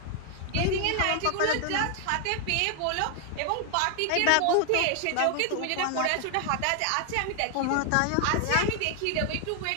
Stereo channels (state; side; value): different; both; correlation 0.00